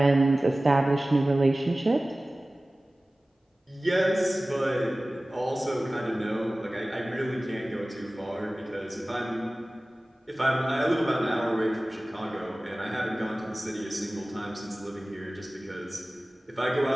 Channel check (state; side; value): normal; both; correlation 0.98